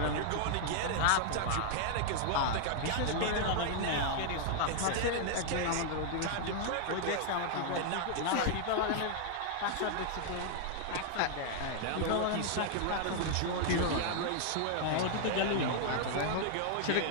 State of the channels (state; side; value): different; both; correlation 0.00